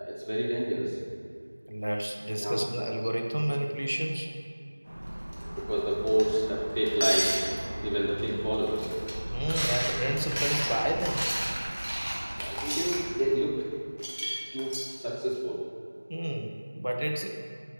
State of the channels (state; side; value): inverted; both; correlation -1.00